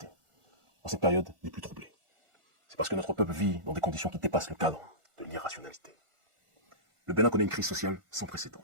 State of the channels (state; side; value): late; left; 1.4 ms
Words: en cette période des plus troublées, c'est parce que notre peuple vit dans des conditions qui dépassent le cadre de l'irrationalité. Le Bénin connaît une crise sociale sans précédent.